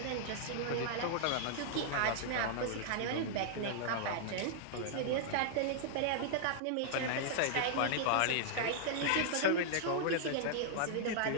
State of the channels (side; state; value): both; different; correlation -0.01